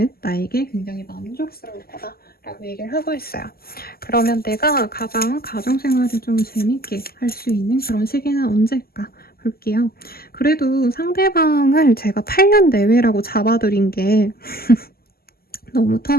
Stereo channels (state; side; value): late; right; 0.45 ms